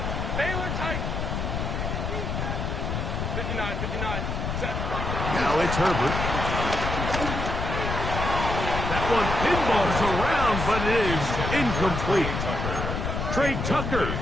Baylor tight. 59. Set. Now it's Herbert. That one pinballs around, but it is incomplete. Trey Tucker,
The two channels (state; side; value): noise; left; rumble, 2 dB below the sound